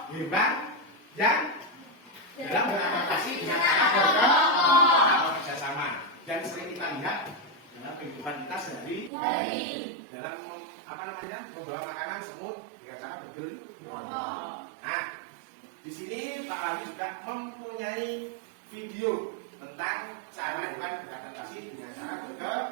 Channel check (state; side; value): drops out; left; at 9.1 s